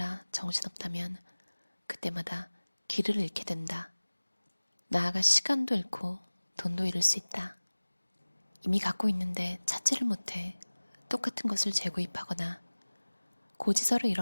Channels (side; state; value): both; inverted; correlation -1.00